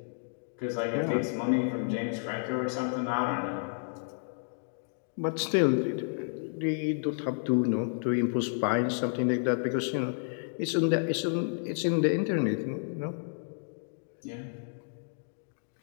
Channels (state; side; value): silent; right; digital silence